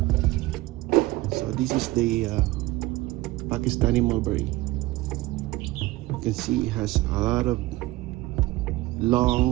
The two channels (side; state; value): left; quieter; 19.2 dB